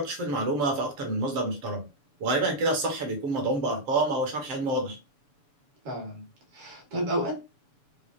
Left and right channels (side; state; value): left; late; 7.0 ms